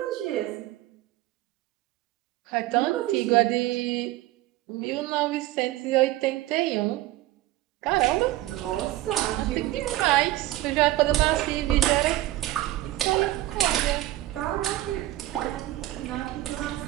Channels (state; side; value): quieter; left; 16.1 dB